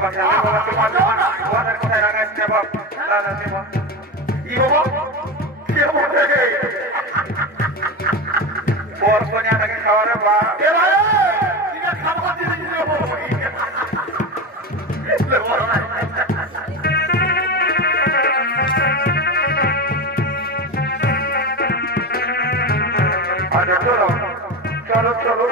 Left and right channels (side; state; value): both; normal; correlation 0.21